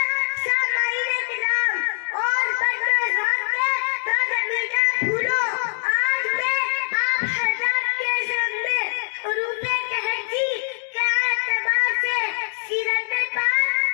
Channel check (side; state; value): right; silent; digital silence